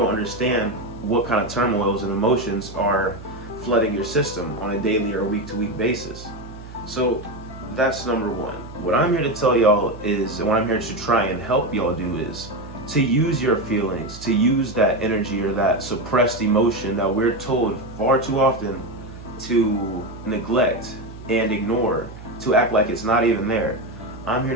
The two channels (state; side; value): noise; right; hum, 15 dB below the sound